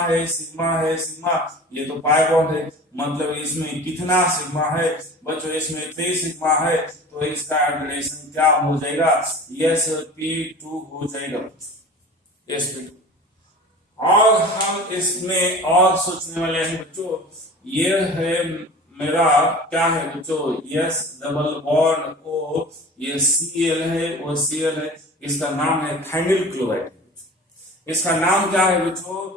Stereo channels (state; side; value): normal; both; correlation 0.39